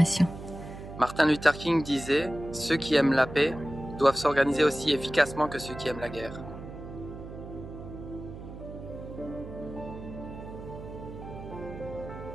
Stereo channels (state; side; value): noise; right; hum, 12 dB below the sound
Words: Martin Luther King disait « Ceux qui aiment la paix doivent s'organiser aussi efficacement que ceux qui aiment la guerre ».